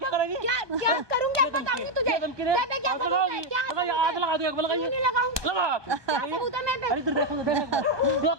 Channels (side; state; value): left; late; 1.2 ms